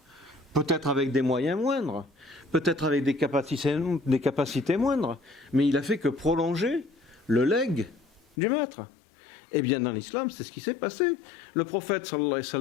peut-être avec des moyens moindres, peut-être avec des capacités moindres, mais il a fait que prolonger le legs du maître. Eh bien, dans l'islam, c'est ce qui s'est passé. Le prophète, sallallahu alayhi wa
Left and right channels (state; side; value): drops out; right; at 8.2 s